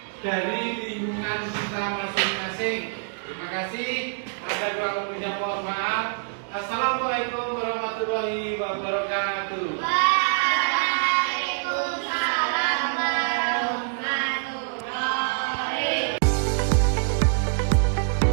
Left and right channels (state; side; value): silent; left; digital silence